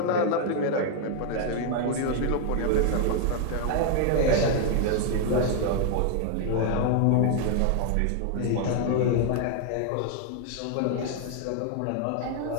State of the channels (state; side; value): different; both; correlation 0.00